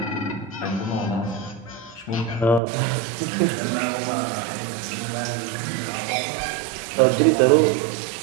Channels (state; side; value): drops out; left; at 2.6 s